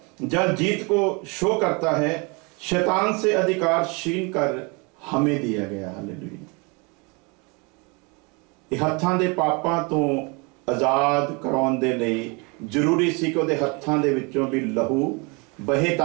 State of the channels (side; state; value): left; quieter; 30.2 dB